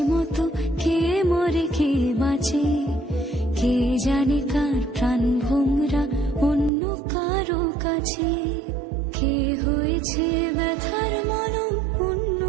মতো কে মরে কে বাঁচে, কে জানে কার প্রাণ ভোমরা অন্য কারো কাছে। কে হয়েছে ব্যথার মলম অন্য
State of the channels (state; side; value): drops out; left; at 6.7 s